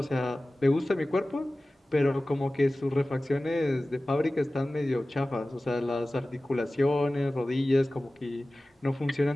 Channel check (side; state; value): both; normal; correlation 0.97